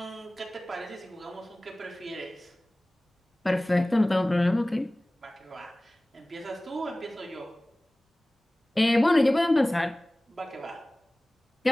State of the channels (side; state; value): both; normal; correlation 0.98